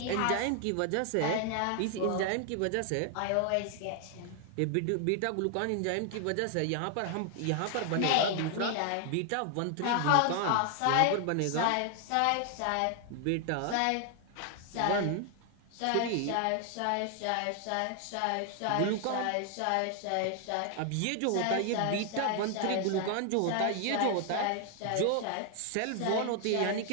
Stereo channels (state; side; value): different; both; correlation 0.00